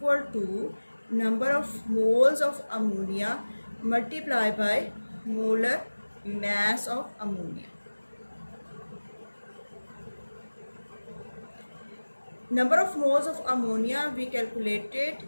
to number of moles of ammonia multiply by molar mass of ammonia. Number of moles of ammonia we calculated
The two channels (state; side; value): inverted; both; correlation -1.00